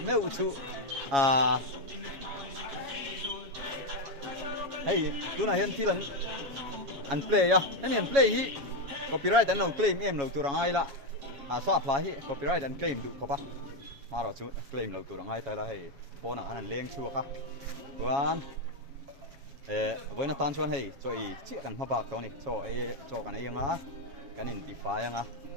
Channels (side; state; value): left; late; 7.2 ms